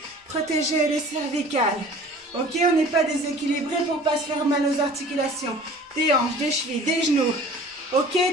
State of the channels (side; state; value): both; normal; correlation 0.46